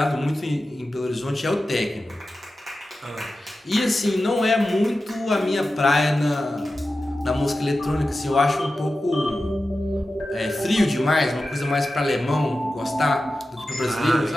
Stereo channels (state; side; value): normal; both; correlation 0.93